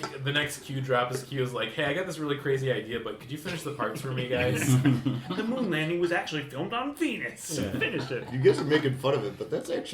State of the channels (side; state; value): both; identical; correlation 1.00